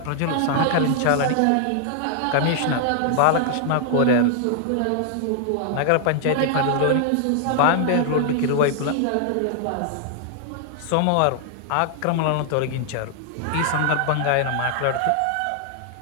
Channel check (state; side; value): different; both; correlation -0.01